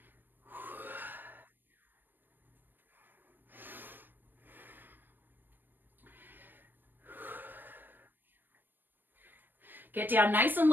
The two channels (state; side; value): late; left; 0.093 ms